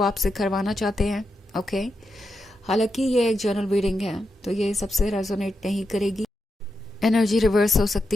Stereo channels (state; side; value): normal; both; correlation 0.86